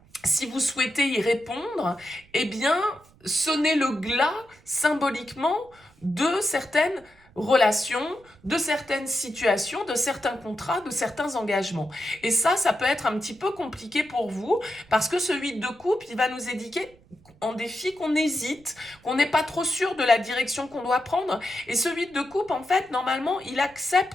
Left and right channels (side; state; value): right; noise; rumble, 28 dB below the sound